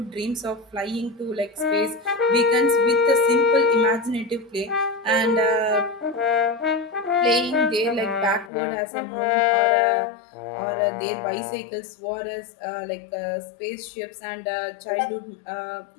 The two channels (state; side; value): drops out; right; at 8.5 s